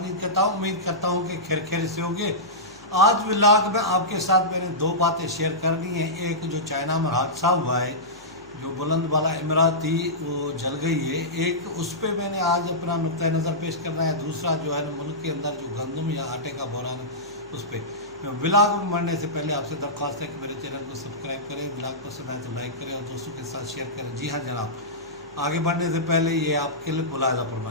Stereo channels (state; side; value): noise; left; hum, 26 dB below the sound